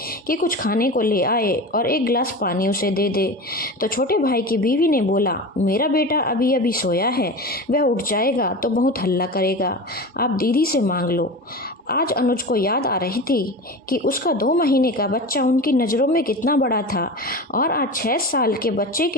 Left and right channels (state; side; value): normal; both; correlation 0.29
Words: कि कुछ खाने को ले आए और एक गिलास पानी उसे दे दे। तो छोटे भाई की बीवी ने बोला, मेरा बेटा अभी अभी सोया है, वह उठ जाएगा तो बहुत हल्ला करेगा, आप दीदी से मांग लो। आज अनुज को याद आ रही थी कि उसका 2 महीने का बच्चा उनकी नज़रों में कितना बड़ा था और आज 6 साल के बच्चे